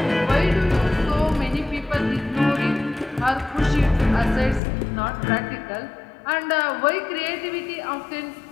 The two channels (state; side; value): drops out; right; at 4.6 s